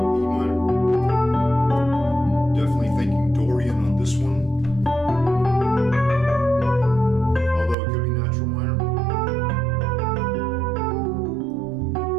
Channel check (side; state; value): left; drops out; at 7.8 s